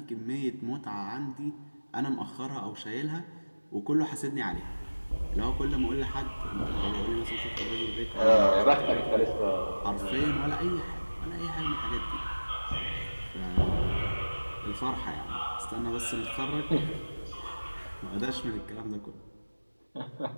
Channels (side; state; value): both; inverted; correlation -1.00